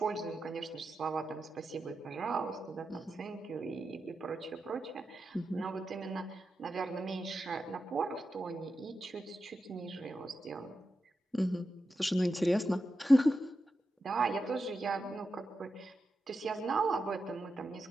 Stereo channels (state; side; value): normal; both; correlation 0.89